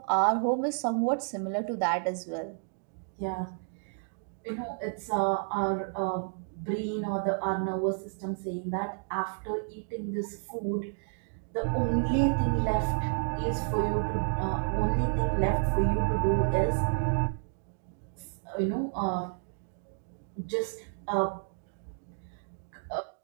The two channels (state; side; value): silent; left; digital silence